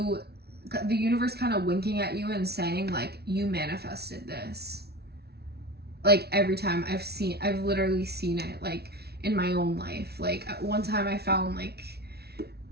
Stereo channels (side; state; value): left; late; 0.47 ms